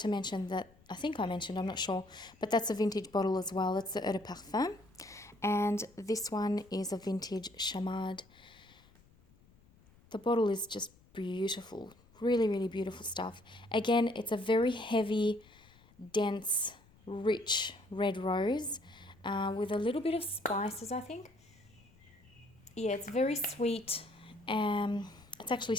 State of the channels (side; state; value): left; noise; rumble, 28 dB below the sound